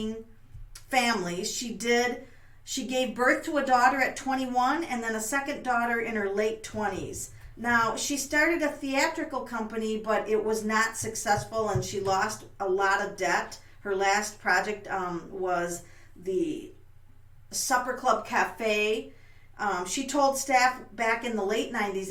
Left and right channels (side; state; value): both; identical; correlation 1.00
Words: families. She gave birth to a daughter at 21 and then a second daughter in her late 20s. Now, she started a theatrical company, but it was not successful and she lost a lot of debt. Her last project was the Supper Club Cafe. She told staff back in the late 90s